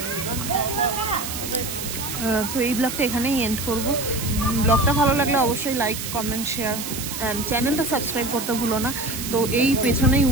তো এই ব্লগটা এখানেই এন্ড করব। ব্লগটা ভালো লাগলে অবশ্যই লাইক, কমেন্ট, শেয়ার অ্যান্ড চ্যানেলটা সাবস্ক্রাইব করতে ভুলো না। তো এই পেছনেই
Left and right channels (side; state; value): right; noise; hiss, 6 dB below the sound